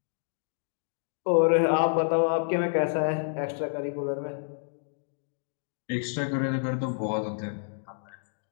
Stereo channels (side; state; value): right; silent; digital silence